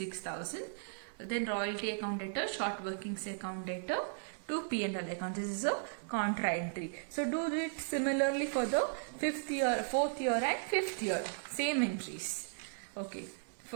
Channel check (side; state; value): left; silent; digital silence